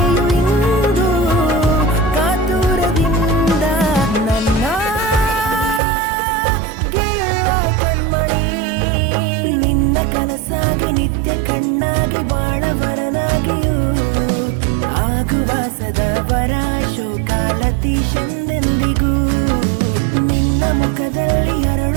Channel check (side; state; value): left; drops out; at 5.8 s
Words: ಇಂದು ಕಾತುರದಿಂದ ನನ್ನ ಕನಸಾಗಿ ನಿತ್ಯ ಕಣ್ಣಾಗಿ ಬಾಳವರನಾಗಿಯೂ ಆಗುವ ಸದಾವರ ಶೋಕಾಲತೀಶಂದೆಂದಿಗೂ. ನಿನ್ನ ಮುಖದಲ್ಲಿ